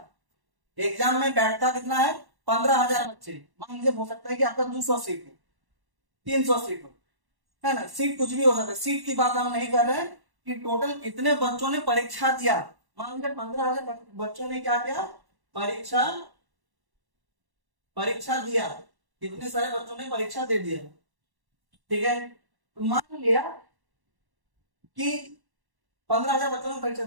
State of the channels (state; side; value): late; left; 1.1 ms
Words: एग्जाम में बैठता कितना है? 15,000 बच्चे। मान लीजिए हो सकता है कि आपका 200 सीट हो, 300 सीट हो, है ना? सीट कुछ भी हो सकता है, सीट की बात हम नहीं कर रहे हैं कि टोटल कितने बच्चों ने परीक्षा दिया। मान लीजिए 15,000 बच्चों ने क्या किया? परीक्षा परीक्षा दिया। कितने सारे बच्चों ने परीक्षा दे दिया, ठीक है? तो मान लिया कि 15,000 बच्चों ने परीक्षा